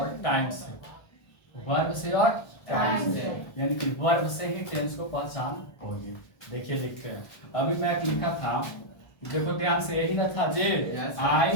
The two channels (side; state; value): right; late; 1.3 ms